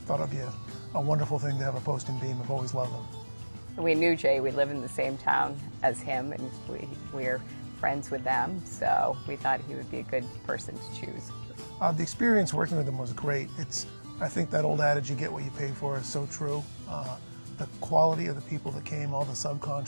thought it'd be a wonderful thing to have a post and beam. I've always loved them. We knew Jay. We live in the same town as him, and we're friends with them, so we thought he would be a good person to choose. The experience working with him was great. I think that old adage, you get what you pay for, is so true. The quality of the people that came, all the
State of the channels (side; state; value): both; inverted; correlation -1.00